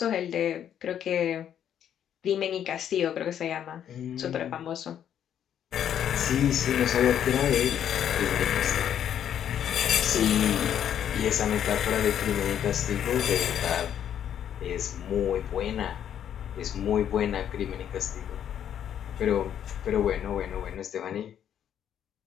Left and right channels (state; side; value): quieter; right; 9.6 dB